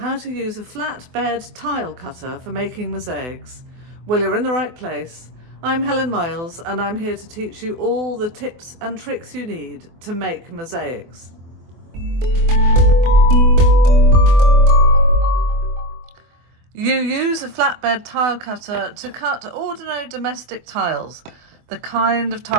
to use a flatbed tile cutter for making mosaics? Well, you're in the right place. I'm Helen Miles and I'm here to teach you all the tips and tricks you need to make mosaics. You use a flatbed tile cutter to cut ordinary domestic tiles, the kind of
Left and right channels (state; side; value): late; left; 24 ms